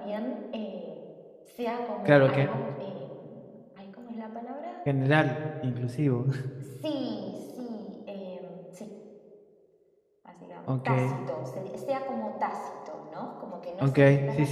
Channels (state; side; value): identical; both; correlation 1.00